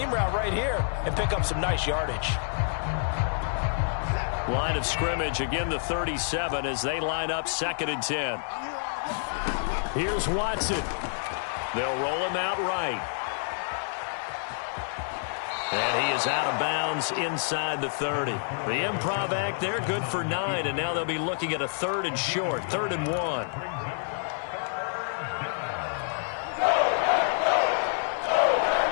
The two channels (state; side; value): silent; right; 59 dB below the other